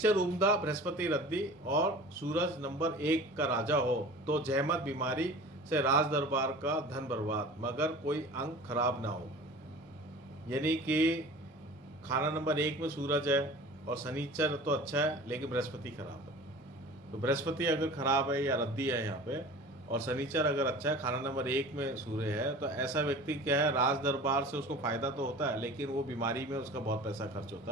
उम्दा, बृहस्पति रद्दी और सूरज नंबर 1 का राजा हो तो जहमत बीमारी से राज दरबार का धन बर्बाद, मगर कोई अंग खराब ना हो। यानी कि खाना नंबर 1 में सूरज है और शनिचर तो अच्छा है लेकिन बृहस्पति खराब है, तो बृहस्पति अगर खराब है या रद्दी है यहाँ पे, और शनिचर अगर अच्छा है, खाना नंबर 1 में सूर्य है, तो ऐसा व्यक्ति क्या है, राज दरबार से उसको फायदा तो होता है लेकिन वो बीमारी में उसका बहुत पैसा खर्च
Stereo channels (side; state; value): both; normal; correlation 0.40